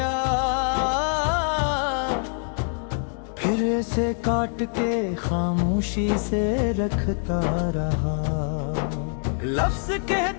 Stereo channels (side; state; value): right; silent; 57 dB below the other